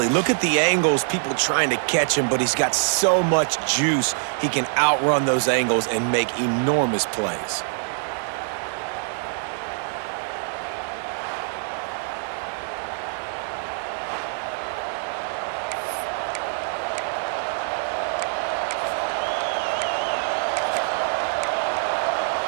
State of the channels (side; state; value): left; silent; digital silence